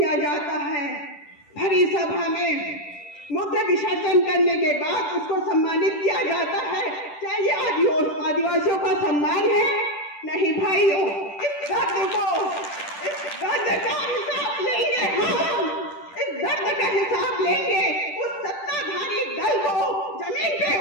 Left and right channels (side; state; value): right; late; 10 ms